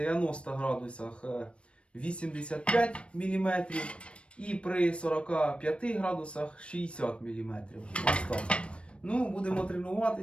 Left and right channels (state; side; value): late; right; 0.059 ms